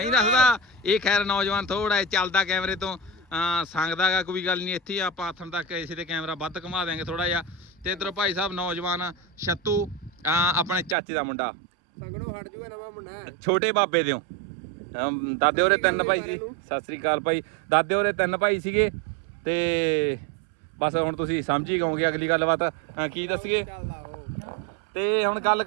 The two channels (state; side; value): drops out; left; at 11.0 s